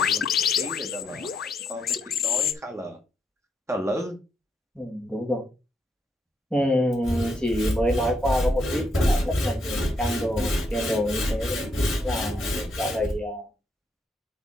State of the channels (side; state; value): both; normal; correlation 0.78